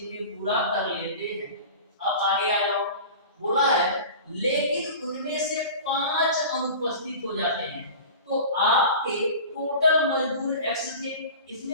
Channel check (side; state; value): both; inverted; correlation -0.36